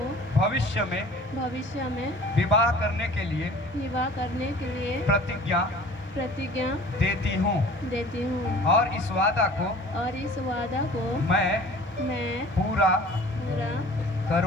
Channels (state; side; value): normal; both; correlation 0.46